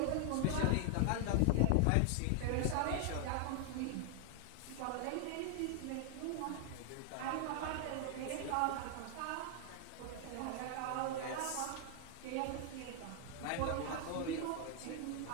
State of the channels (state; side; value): different; both; correlation 0.00